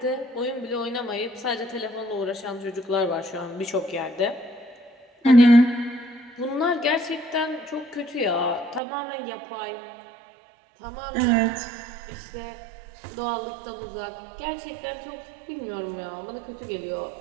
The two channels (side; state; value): left; drops out; at 8.8 s